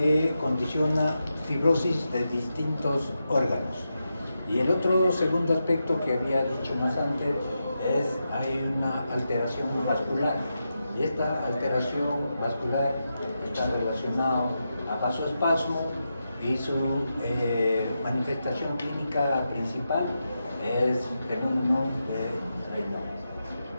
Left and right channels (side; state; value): both; inverted; correlation -0.88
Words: condiciona fibrosis de distintos órganos. Y el otro segundo aspecto que había dicho más antes es hay una alteración vascular. Y esta alteración vascular está relacionada a vasoespasmo y su manifestación clínica principal es fenómeno de Raynaud.